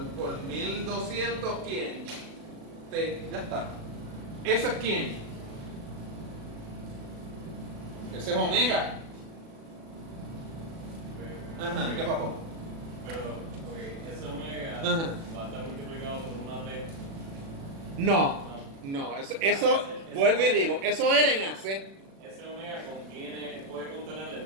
por 1200, ¿quién? T, ya está. ¿Eso es quién? Ese es omega. ¿Qué pasó? Pero, ese omega va a estar multiplicado por una T. No, eso vuelvo y digo, eso era en AC. Ese omega puede contener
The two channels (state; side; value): late; left; 36 ms